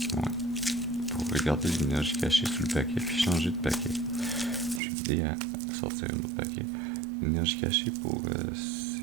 regarder l'énergie cachée sous le paquet puis changer de paquet. Je vais aider à sortir un autre paquet. L'énergie cachée pour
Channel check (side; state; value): left; drops out; at 4.8 s